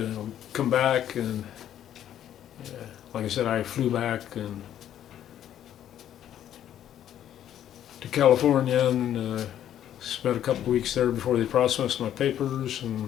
come back, and like I said, I flew back to California and spent a couple weeks there before they processed my papers, and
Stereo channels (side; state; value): right; quieter; 10.9 dB